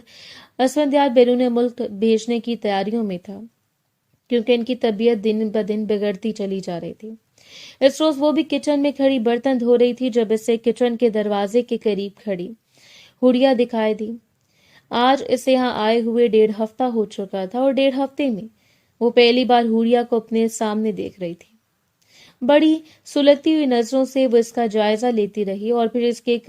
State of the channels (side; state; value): both; identical; correlation 1.00